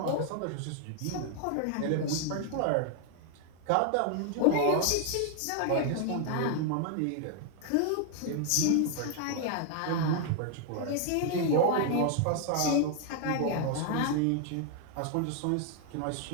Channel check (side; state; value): both; different; correlation 0.00